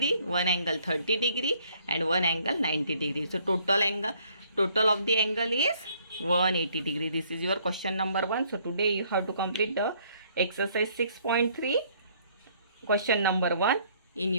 one angle 30 degree, and one angle 90 degree. So total of the angle is 180 degree. This is your question number 1. So today you have to complete the exercise 6.3 question number 1 in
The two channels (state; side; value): inverted; both; correlation -0.64